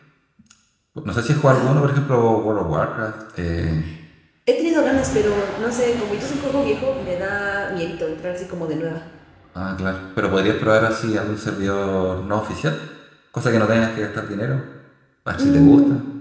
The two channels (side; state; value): both; identical; correlation 1.00